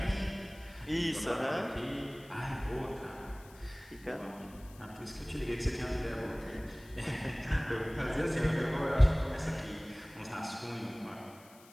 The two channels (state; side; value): noise; left; hiss, 24 dB below the sound